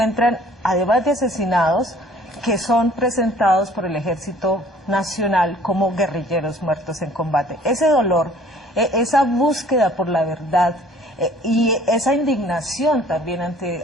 además de asesinados, que son presentados por el Ejército Nacional como guerrilleros muertos en combate. Ese dolor, esa búsqueda por la verdad y esa indignación también ante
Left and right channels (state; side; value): normal; both; correlation 0.54